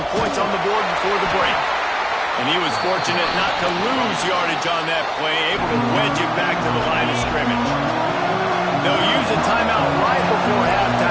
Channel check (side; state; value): both; identical; correlation 1.00